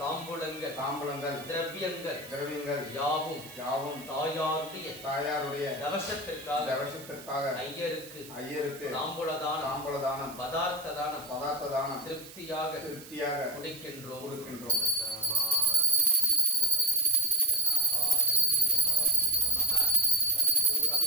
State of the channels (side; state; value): right; noise; hiss, 17 dB below the sound